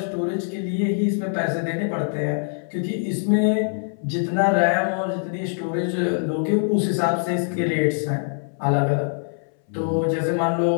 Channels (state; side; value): silent; right; 61 dB below the other